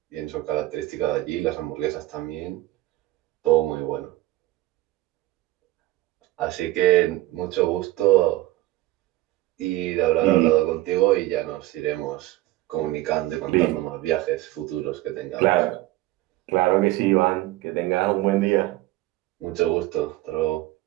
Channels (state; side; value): quieter; left; 17.2 dB